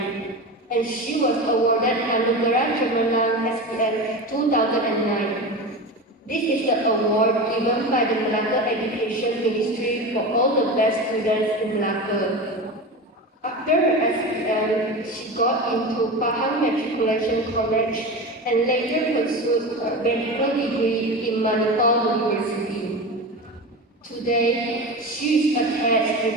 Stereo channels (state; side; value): normal; both; correlation 0.26